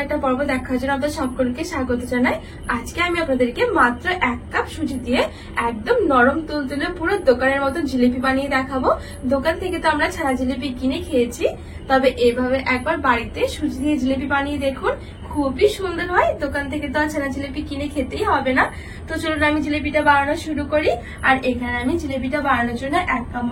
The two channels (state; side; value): identical; both; correlation 1.00